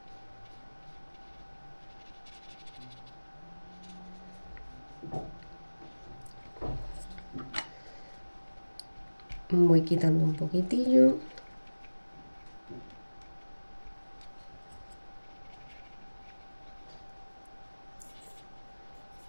Voy quitando un poquitillo.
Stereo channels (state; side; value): inverted; both; correlation -1.00